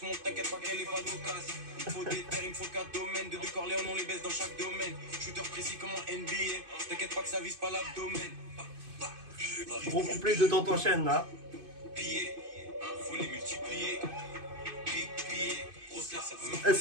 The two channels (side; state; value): left; late; 2.5 ms